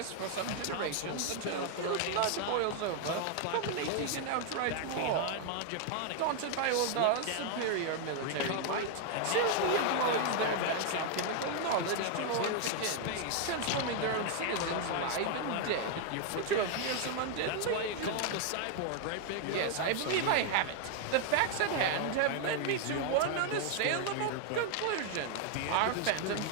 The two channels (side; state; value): both; different; correlation 0.00